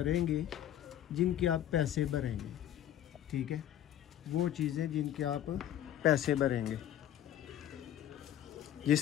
जिनके आप पैसे भरेंगे। ठीक है, वो चीज़ें जिनके आप पैसे भरेंगे।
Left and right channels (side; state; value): right; quieter; 11.5 dB